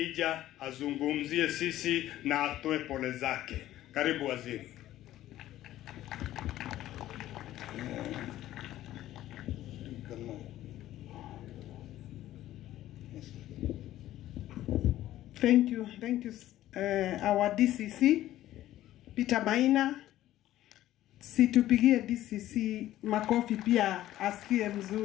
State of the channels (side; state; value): right; quieter; 14.0 dB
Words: azungumzie sisi na atoe pole zake. Karibu waziri. Thank you, our DCC Peter Maina. Situpigie DCC makofi pia asikie